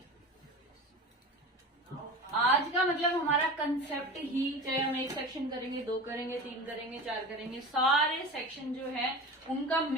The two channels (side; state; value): both; normal; correlation 0.32